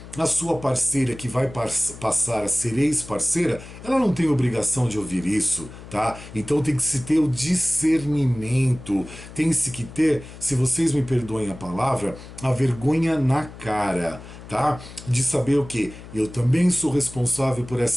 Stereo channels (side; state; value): left; noise; hum, 16 dB below the sound